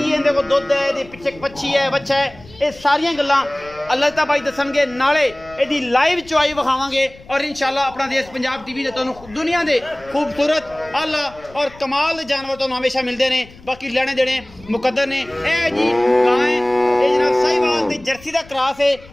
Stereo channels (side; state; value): left; noise; rumble, 22 dB below the sound